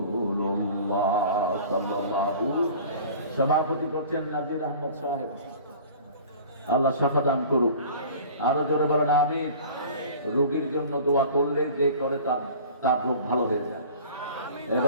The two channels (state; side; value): inverted; both; correlation -0.43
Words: সাল্লাল্লাহু। সভাপতি করছেন নাজির আহমদ সাহেব। আল্লাহ শাফা দান করুক। আরো জোরে বলেন আমিন। রোগীর জন্য দোয়া করলে যে করে তার রোগ ভালো হয়ে যায়।